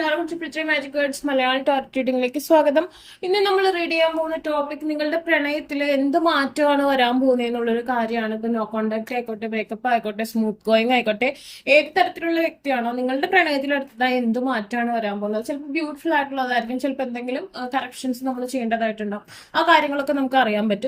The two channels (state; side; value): identical; both; correlation 1.00